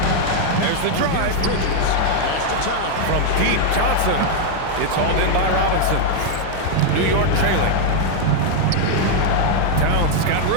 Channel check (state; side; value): different; both; correlation 0.00